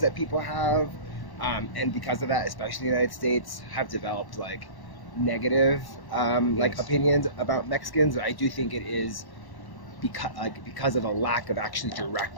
that people have. And because of that, especially in the United States, have developed like negative Yes. opinions about Mexicans. I do think it is because of a lack of actually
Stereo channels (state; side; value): late; right; 1.1 ms